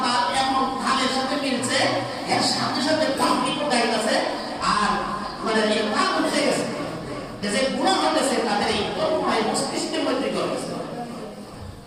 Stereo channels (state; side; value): identical; both; correlation 1.00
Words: এমন খালের সাথে মিলছে, এর সাথে সাথে পাবলিকও গাইতেছে আর মানে এই পাপ হয়ে গেছে যে গুণা হতেছে তাদের এই কর্ময় মস্তিষ্কের মধ্যে করতেছে।